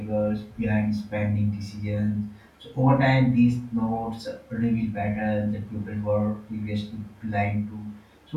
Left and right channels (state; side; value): identical; both; correlation 1.00